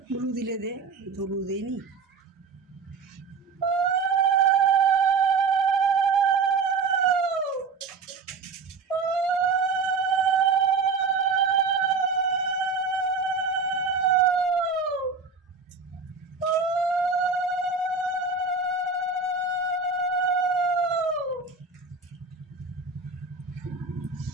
ধুলু দিলে দে, ধুলু দেয়নি।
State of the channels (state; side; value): quieter; left; 4.6 dB